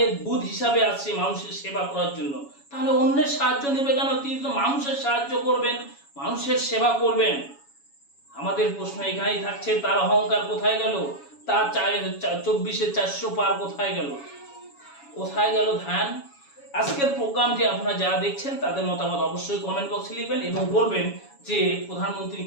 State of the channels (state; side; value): late; right; 7.2 ms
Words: দূত হিসাবে আসছি মানুষের সেবা করার জন্য। তাহলে অন্যের সাহায্য নেবে কেন? তিনি তো মানুষের সাহায্য করবেন, মানুষের সেবা করবেন। আমাদের প্রশ্ন এখানেই থাকছে, তার অহংকার কোথায় গেল? তার 24-এ 400 পার কোথায় গেল? কোথায় গেল ধ্যান? আজকের প্রোগ্রামটি আপনারা যারা দেখছেন তাদের মতামত অবশ্যই কমেন্ট বক্সে লিখবেন এবং বলবেন যে প্রধানমন্ত্রী